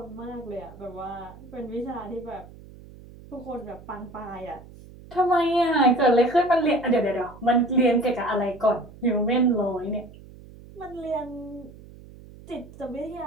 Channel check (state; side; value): noise; right; hum, 19 dB below the sound